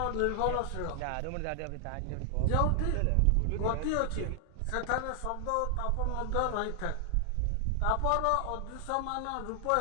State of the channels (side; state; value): both; different; correlation 0.00